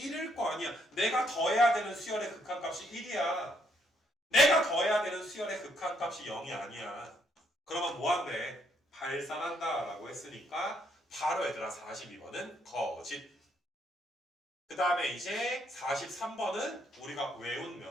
거 아니야. 내가 더해야 되는 수열의 극한값이 1이야. 내가 더해야 되는 수열의 극한값이 0이 아니야. 그러면 뭐한대? 발산한다 라고 했으니까 바로 얘들아 42번은 거짓. 그 다음에 이제 43번은 우리가 외운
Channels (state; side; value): normal; both; correlation 0.72